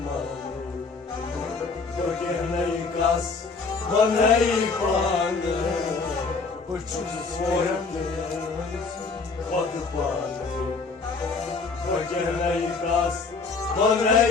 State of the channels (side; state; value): right; quieter; 4.4 dB